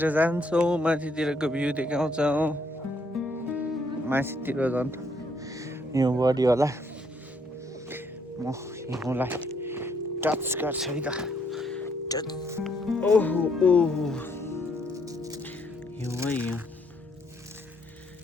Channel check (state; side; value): normal; both; correlation 0.70